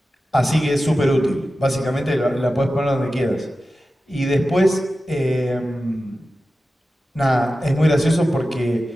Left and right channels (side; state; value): both; normal; correlation 0.94